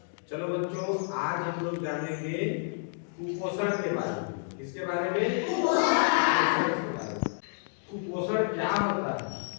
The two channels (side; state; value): right; silent; digital silence